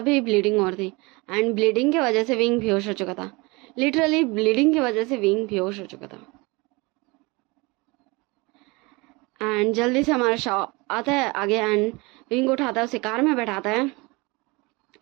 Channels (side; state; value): left; quieter; 25.5 dB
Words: ब्लीडिंग हो रही थी एंड ब्लीडिंग की वजह से विंग बेहोश हो चुका था। लिटरली ब्लीडिंग की वजह से विंग बेहोश हो चुका था। एंड जल्दी से हमारा शाओ आता है आगे एंड विंग को उठाता है, उसे कार में बैठाता है